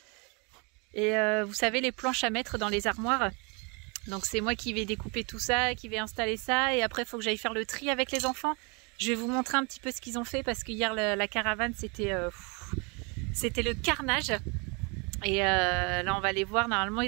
Et vous savez, les planches à mettre dans les armoires. Donc c'est moi qui vais découper tout ça, qui vais installer ça. Et après, il faut que j'aille faire le tri avec les enfants. Je vais vous montrer un petit peu ce qu'ils ont fait. Parce que hier, la caravane, c'était le carnage. Et là, on va les voir. Normalement,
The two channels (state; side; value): quieter; left; 31.5 dB